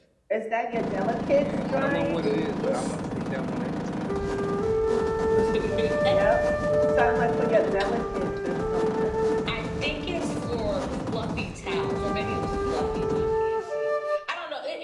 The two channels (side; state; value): both; identical; correlation 1.00